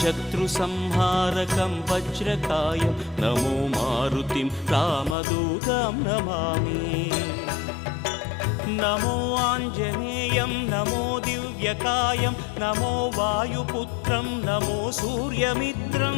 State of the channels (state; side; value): drops out; right; at 5.2 s